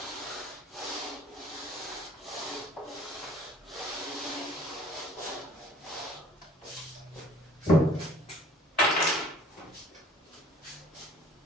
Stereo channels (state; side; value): normal; both; correlation 0.52